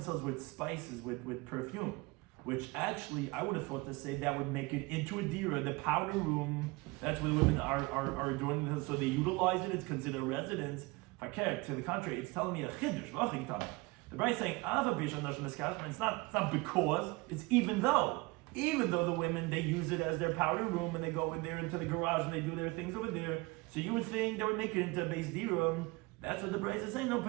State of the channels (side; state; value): left; quieter; 24.6 dB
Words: with spices, with perfume. Which actually, I would have thought to say that would make it into a dira, the powder room. That's where the women are adorning themselves. So they utilize it, it's considered a residence. To the contrary, it's telling me a chiddush. The Bride is saying, it's not because, it's even though. Even though the women, they use it as their powder room and they go in there into the garage and they do their things over there. So you would think they would make it into a base dirum. That's what the Bride is saying. No,